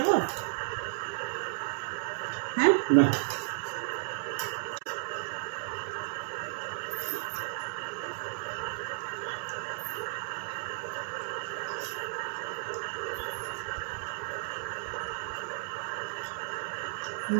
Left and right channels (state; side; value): silent; left; digital silence